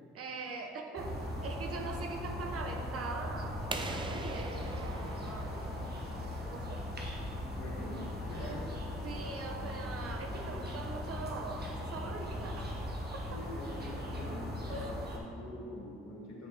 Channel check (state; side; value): normal; both; correlation 0.54